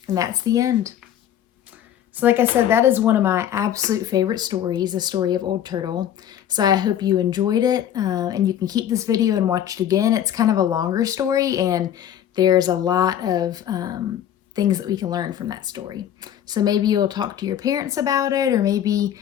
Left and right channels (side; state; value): right; quieter; 10.4 dB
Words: And that's the end. So like I said, that is one of my absolute favorite stories, the story of Old Turtle. So I hope you enjoyed it, and you can keep this video and watch it again. It's kind of a longer story, and there's a lot of things that we can learn from that story. So maybe you'll talk to your parents about it, or maybe